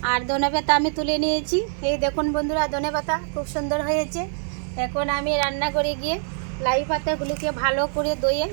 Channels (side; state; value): left; silent; 63 dB below the other